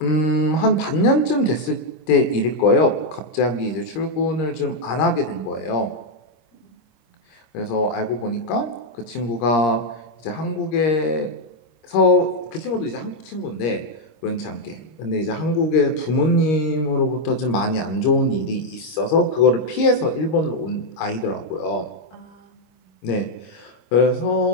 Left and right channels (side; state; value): right; late; 26 ms